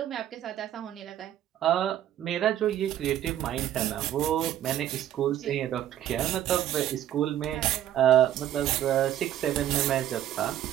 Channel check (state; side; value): quieter; left; 11.8 dB